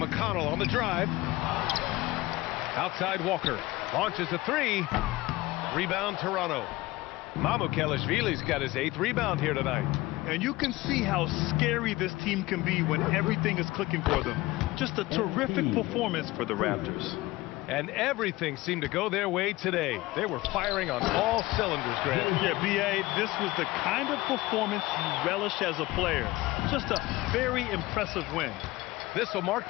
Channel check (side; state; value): right; quieter; 19.4 dB